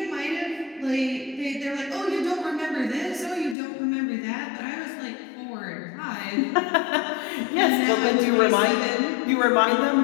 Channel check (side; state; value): right; drops out; at 3.6 s